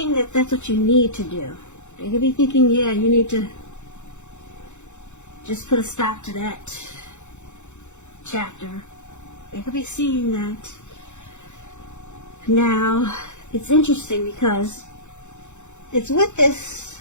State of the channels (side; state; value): right; late; 0.84 ms